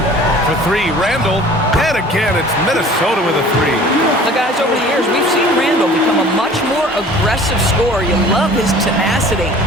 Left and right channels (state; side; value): normal; both; correlation 0.47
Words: For 3, Randall. And again, it's Minnesota with a 3. The guys, over the years, we've seen Randall become a much more aggressive scorer. You love his tenacity.